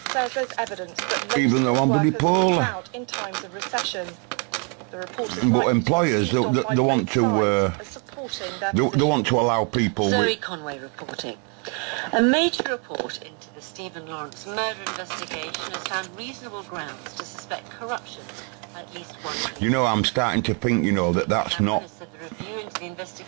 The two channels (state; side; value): quieter; left; 38.0 dB